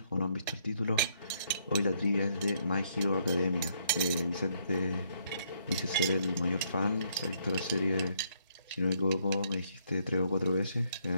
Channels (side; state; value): both; inverted; correlation -0.70